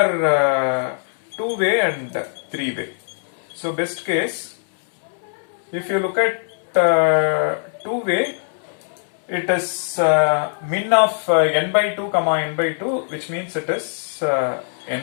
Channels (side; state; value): right; silent; digital silence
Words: two-way and three-way. So best case, if you look at two-way, it is min of n by 2 comma n by 2, which means it is